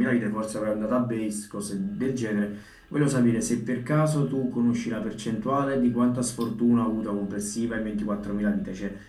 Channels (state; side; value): identical; both; correlation 1.00